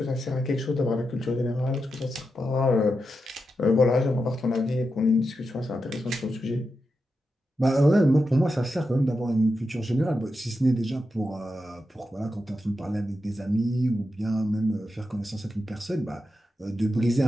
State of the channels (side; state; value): both; normal; correlation 0.88